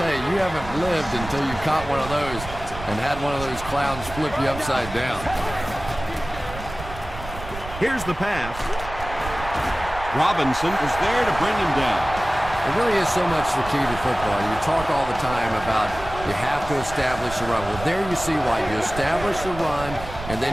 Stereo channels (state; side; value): noise; right; rumble, 12 dB below the sound